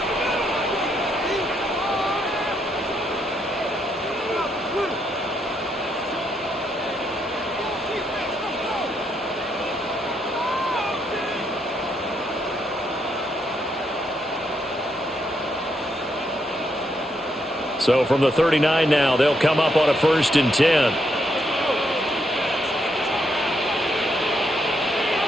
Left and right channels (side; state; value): both; normal; correlation 0.77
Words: So from the 39 now, they'll come up on a 1st and 10.